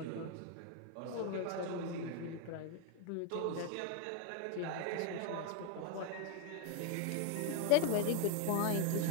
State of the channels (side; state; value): both; different; correlation 0.01